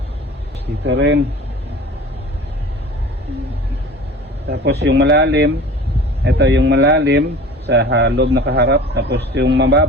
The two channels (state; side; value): normal; both; correlation 0.41